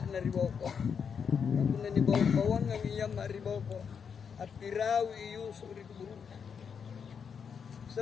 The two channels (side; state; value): right; quieter; 6.7 dB